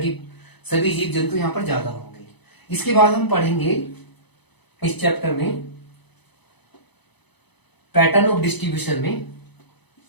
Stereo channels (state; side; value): late; right; 0.99 ms